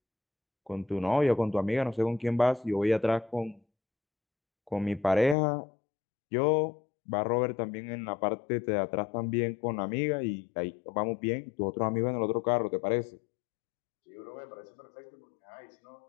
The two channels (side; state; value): right; drops out; at 5.4 s